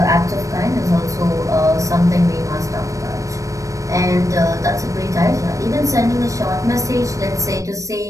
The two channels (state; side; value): late; left; 0.16 ms